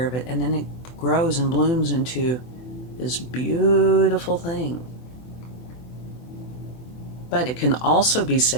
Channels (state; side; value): late; right; 24 ms